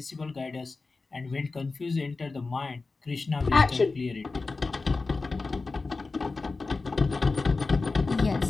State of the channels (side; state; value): right; quieter; 3.8 dB